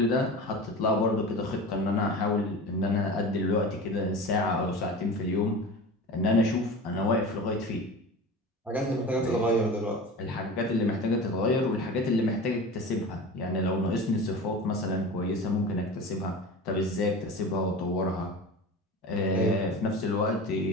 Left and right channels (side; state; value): both; normal; correlation 0.33